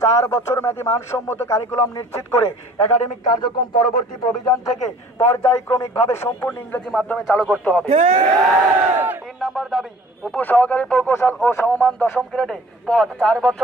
4 বছর মেয়াদী মানসম্মত কারিকুলাম নিশ্চিত করে একাডেমিক কার্যক্রম পরবর্তী প্রভিজন থেকে পর্যায়ক্রমিকভাবে সম্পূর্ণ ইংরেজি মাধ্যমে চালু করতে হবে। 3 নম্বর দাবি উপসহকারী প্রকৌশল ও সমমান 10ম গ্রেডে পদ 4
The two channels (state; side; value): normal; both; correlation 0.50